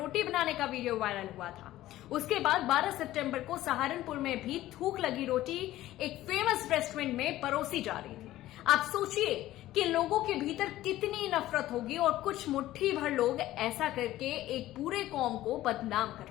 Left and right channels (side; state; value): right; quieter; 15.0 dB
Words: बनाने का वीडियो वायरल हुआ था। उसके बाद 12 सितंबर को सहारनपुर में भी थूक लगी रोटी एक फेमस रेस्टोरेंट में परोसी जा रही थी। आप सोचिए कि लोगों के भीतर कितनी नफरत होगी और कुछ मुट्ठी भर लोग ऐसा करके एक पूरे कौम को बदनाम